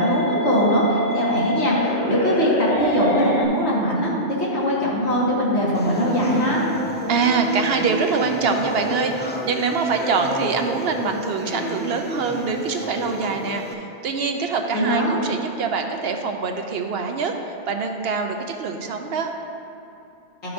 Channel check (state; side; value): normal; both; correlation -0.11